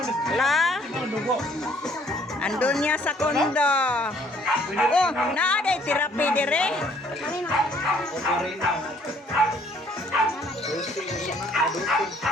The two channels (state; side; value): normal; both; correlation 0.62